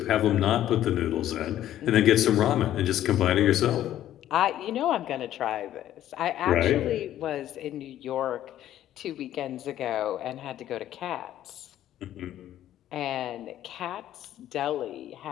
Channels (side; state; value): right; quieter; 12.3 dB